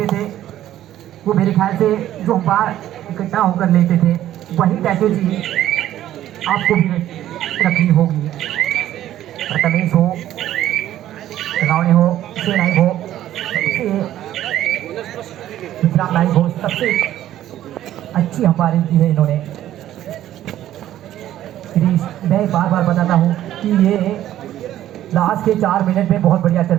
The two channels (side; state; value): left; quieter; 12.7 dB